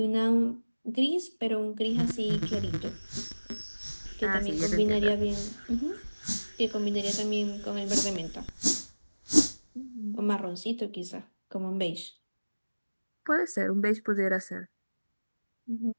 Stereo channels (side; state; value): both; inverted; correlation -1.00